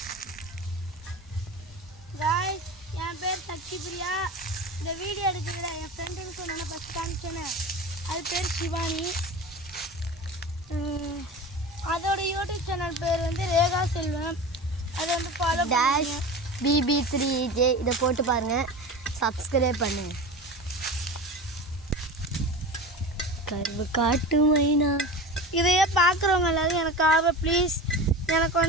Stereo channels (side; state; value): both; normal; correlation 0.31